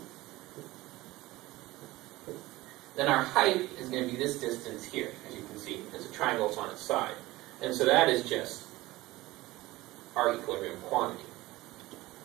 Then our height is going to be this distance here, as you can see, as a triangle is on its side. And so that is just our equilibrium quantity.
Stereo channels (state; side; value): quieter; left; 18.8 dB